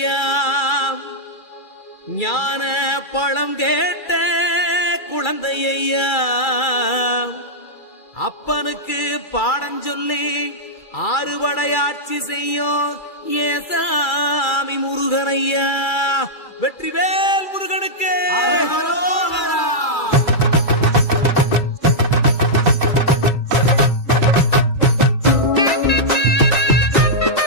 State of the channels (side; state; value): right; late; 2.3 ms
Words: ஞான பழம் கேட்ட குழந்தையா அப்பனுக்கு பாடம் சொல்லி ஆறுபடையாட்சி செய்யும் ஏசாமி முருகனையா. வெற்றிவேல் முருகனுக்கு.